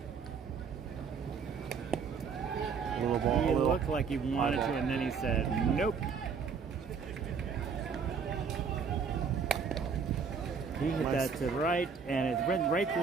Little ball. he looked like he wanted to, and then he said, nope. He hit that to right, and it went right through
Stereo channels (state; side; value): quieter; left; 6.0 dB